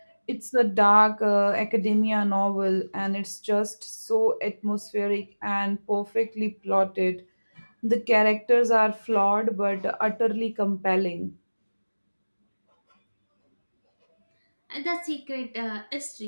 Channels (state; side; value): inverted; both; correlation -1.00